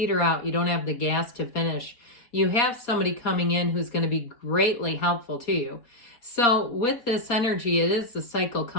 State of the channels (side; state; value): right; late; 4.3 ms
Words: out, you don't have the gas to finish. You have somebody coming in who's going to be greatly helpful to you. So with this energy, it is the cycle